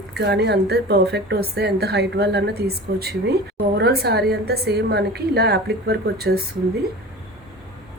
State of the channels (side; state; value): both; normal; correlation 0.36